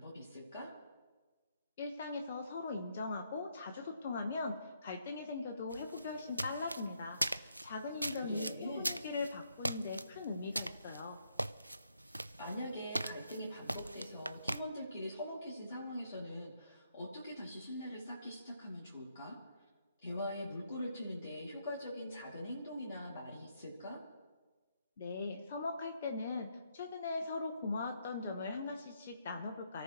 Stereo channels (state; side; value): inverted; both; correlation -0.76